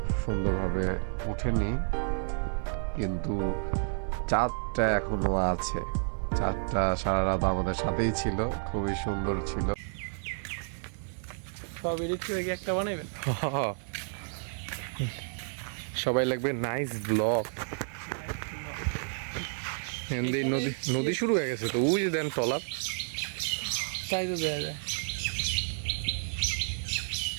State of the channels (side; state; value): left; silent; 57 dB below the other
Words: সুন্দরভাবে ওঠেনি, কিন্তু চাঁদটা এখনো আছে। চাঁদটা সারা রাত আমাদের সাথেই ছিল, খুবই সুন্দর ছিল। সব এডিট করে কি একটা বানাইবেন? সবাই লাগবে নাইস ব্লগ। নদী নদী শুরু হয়ে গেছে তো, ওই যে দেন টলার, তাই তো দেওয়া যায়।